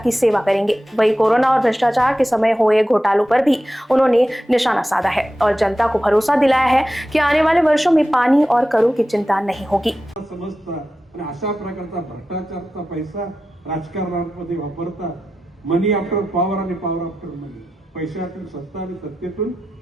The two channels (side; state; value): both; normal; correlation 0.92